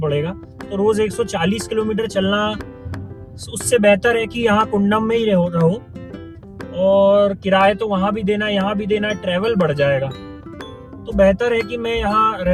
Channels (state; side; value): identical; both; correlation 1.00